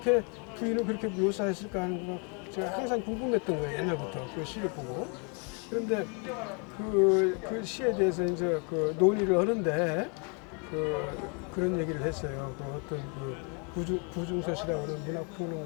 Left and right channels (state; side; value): quieter; right; 35.2 dB